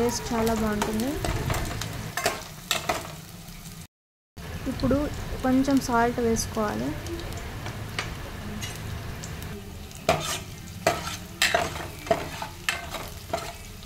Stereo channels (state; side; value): identical; both; correlation 1.00